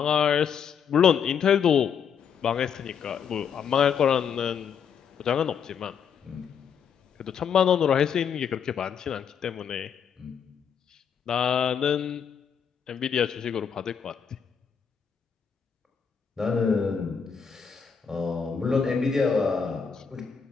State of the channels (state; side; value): quieter; right; 7.1 dB